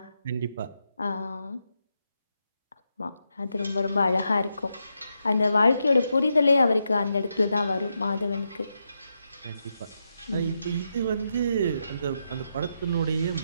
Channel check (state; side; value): inverted; both; correlation -0.84